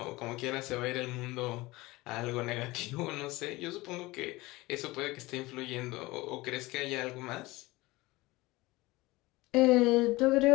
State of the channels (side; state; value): right; quieter; 20.8 dB